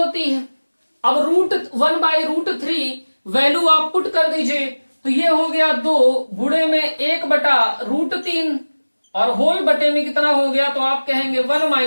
है। अब 1/√3 वैल्यू आप पुट कर दीजिए तो ये हो गया 2 गुणे में 1/√3 और होल बटे में कितना हो गया तो आप कहेंगे 1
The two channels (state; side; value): inverted; both; correlation -1.00